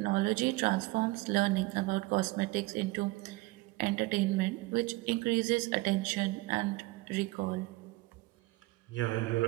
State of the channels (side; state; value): left; quieter; 21.2 dB